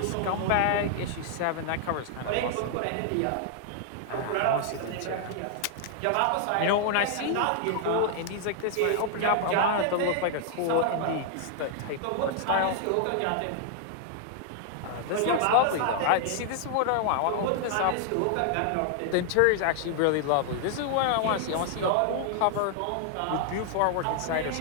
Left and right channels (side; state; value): both; different; correlation -0.01